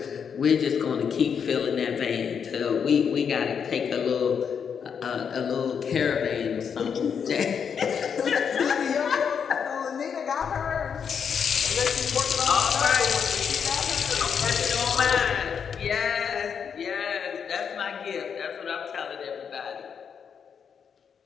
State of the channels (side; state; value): right; quieter; 7.0 dB